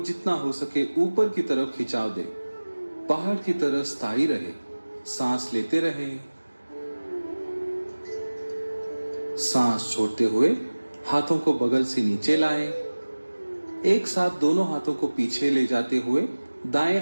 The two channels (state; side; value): inverted; both; correlation -1.00